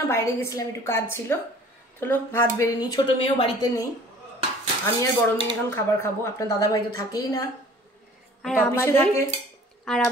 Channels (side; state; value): both; normal; correlation 0.50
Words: বাইরে গেছিলাম, একটু কাজ ছিল। চলো ভাত বেড়ে নিই। ছোট মেয়েও বাড়িতে নেই, আমি আর বড় মেয়ে এখন খাবার খাবো। আপনার দাদা ভাই তো থাকেই না, আর